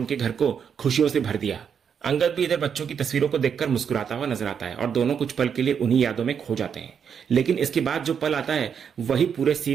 घर को खुशियों से भर दिया। अंगद भी इधर बच्चों की तस्वीरों को देखकर मुस्कुराता हुआ नजर आता है और दोनों कुछ पल के लिए उन्हीं यादों में खो जाते हैं। लेकिन इसके बाद जो पल आता है वही पूरे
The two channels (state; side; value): quieter; left; 7.3 dB